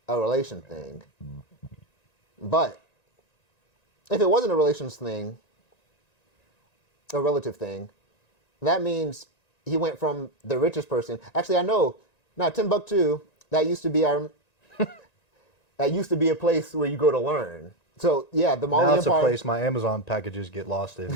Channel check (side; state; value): right; late; 1.9 ms